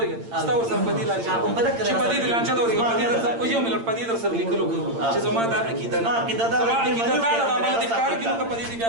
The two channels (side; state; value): left; late; 8.8 ms